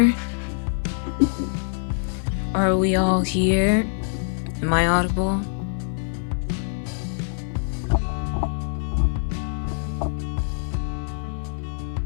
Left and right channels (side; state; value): right; silent; 58 dB below the other